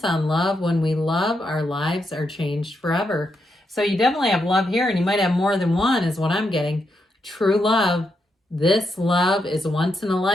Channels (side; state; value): both; normal; correlation 0.82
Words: on love. When we love, our lives are changed forever. So you definitely have love here, and you might have more than one is what I'm getting. True love. This love is once in a